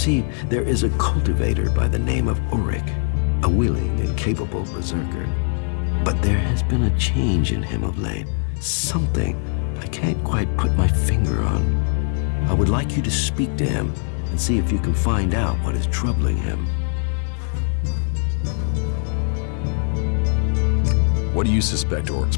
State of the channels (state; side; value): silent; right; 56 dB below the other